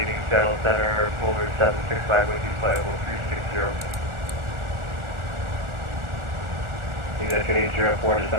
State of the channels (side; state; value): left; late; 1.4 ms